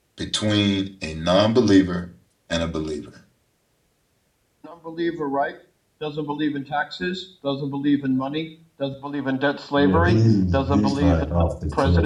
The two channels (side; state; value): both; identical; correlation 1.00